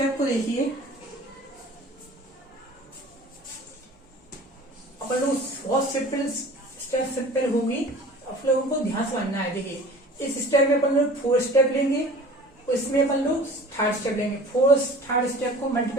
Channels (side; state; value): both; normal; correlation 0.43